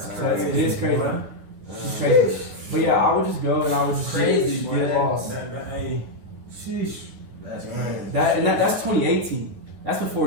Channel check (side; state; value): left; late; 11 ms